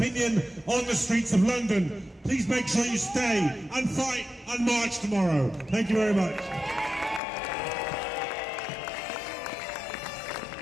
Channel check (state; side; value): drops out; right; at 7.2 s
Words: on the streets of London. Please make sure you stay and fight and march tomorrow. Thank you very much.